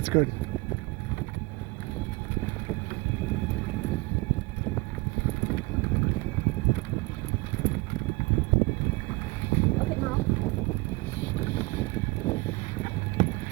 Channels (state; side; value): quieter; left; 24.2 dB